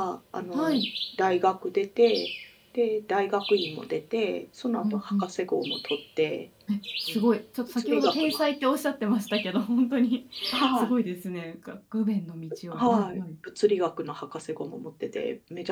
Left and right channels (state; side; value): identical; both; correlation 1.00